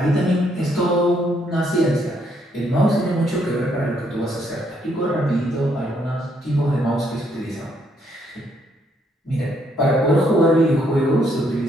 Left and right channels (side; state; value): both; normal; correlation 0.72